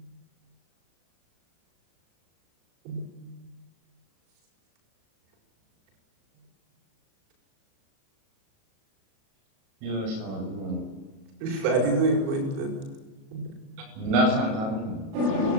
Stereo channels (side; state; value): left; late; 37 ms